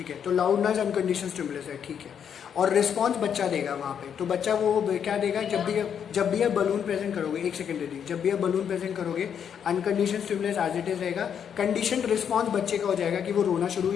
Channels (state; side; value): quieter; right; 8.1 dB